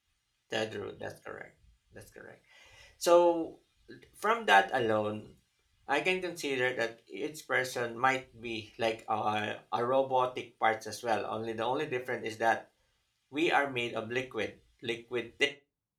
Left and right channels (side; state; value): both; identical; correlation 1.00